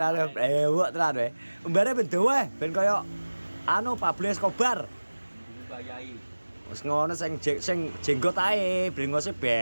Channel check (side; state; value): both; inverted; correlation -1.00